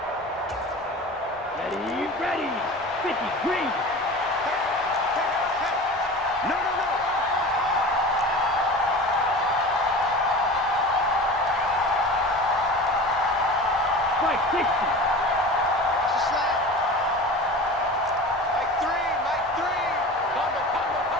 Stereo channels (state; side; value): normal; both; correlation 0.35